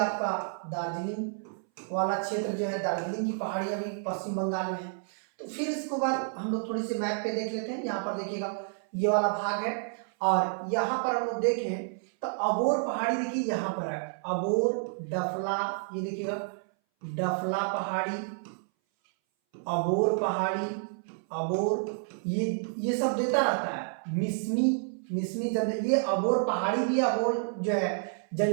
दार्जिलिंग वाला क्षेत्र जो है, दार्जिलिंग की पहाड़ियां भी पश्चिम बंगाल में है। तो फिर इसके बाद हम लोग थोड़ी सी मैप पे देख लेते हैं। यहाँ पर देखिएगा ये वाला भाग है, और यहाँ पर हम लोग देखें तो अबोर पहाड़ी देखिए यहाँ पर है, अबोर, डफला, ये देखिएगा डफला पहाड़ी, अबोर पहाड़ी, अबोर, ये सब देता रहता है। मिसमी जन, ये अबोर पहाड़ी भी है, अबोर जो है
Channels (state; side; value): silent; left; 58 dB below the other